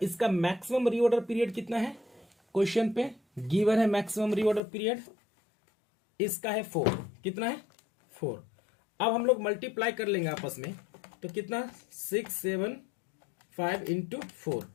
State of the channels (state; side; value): drops out; right; at 4.6 s